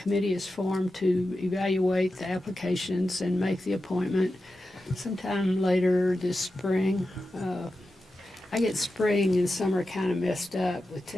is formed to evaluate the applications and make the appointment sometime later this spring. I get spring and summer kind of messed up with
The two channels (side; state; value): both; normal; correlation 0.91